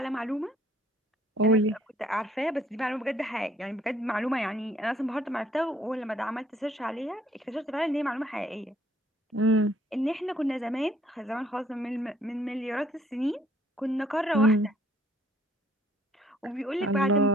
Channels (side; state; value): both; normal; correlation 0.62